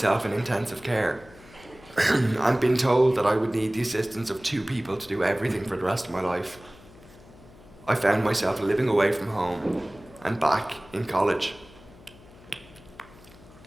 in intensive care, and been told that I would need the assistance of 2 people to do everything for the rest of my life, I found myself living away from home and back in college.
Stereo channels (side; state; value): left; noise; hum, 23 dB below the sound